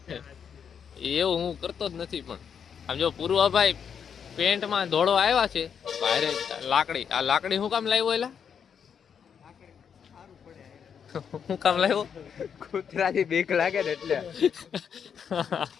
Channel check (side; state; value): right; quieter; 7.4 dB